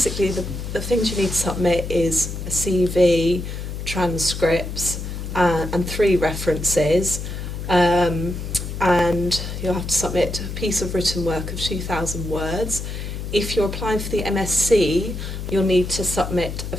the things you need to submit is a CV, transcripts, and 3 references. And you'll have to submit a piece of written work of 2,000 words. If you're applying for the MSc, you'll need to submit a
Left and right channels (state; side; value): noise; left; hum, 6 dB below the sound